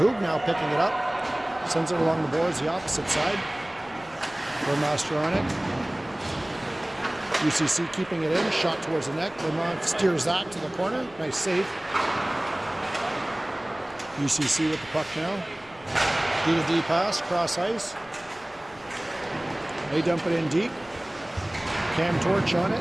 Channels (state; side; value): noise; left; rumble, 25 dB below the sound